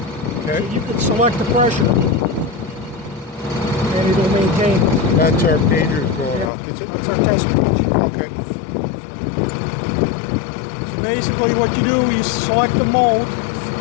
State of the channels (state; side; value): drops out; right; at 6.5 s